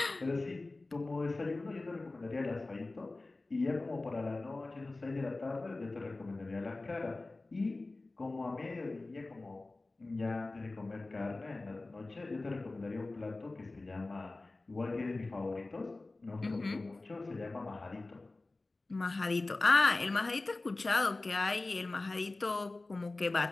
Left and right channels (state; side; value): quieter; right; 3.2 dB